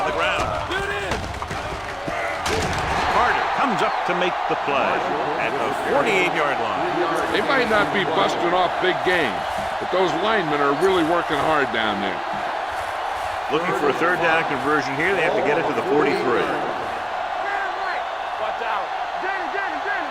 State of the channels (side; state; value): both; identical; correlation 1.00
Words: the ground. Get it in. Carter comes up to make the play at the 48-yard line. They might not be busting off big games, but those linemen are really working hard down there. Looking for a third down conversion here. They have to get it to the 43. Watch out. Danny.